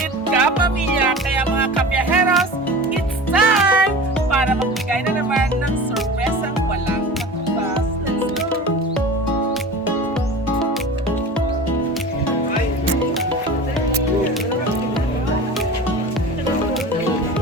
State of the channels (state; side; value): normal; both; correlation 0.35